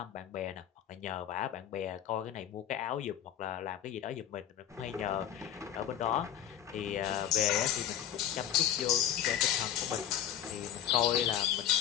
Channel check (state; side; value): quieter; right; 10.6 dB